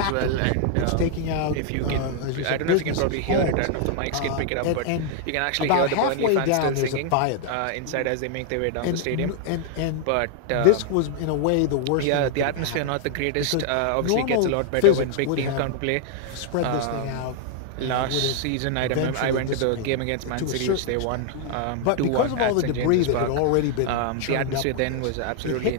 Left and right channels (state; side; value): different; both; correlation 0.00